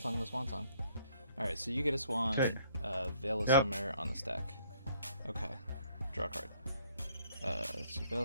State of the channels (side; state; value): both; inverted; correlation -0.62